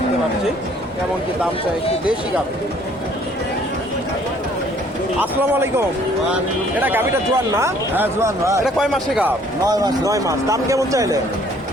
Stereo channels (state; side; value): normal; both; correlation 0.59